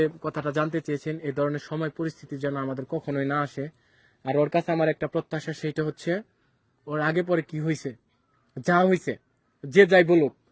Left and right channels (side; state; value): both; identical; correlation 1.00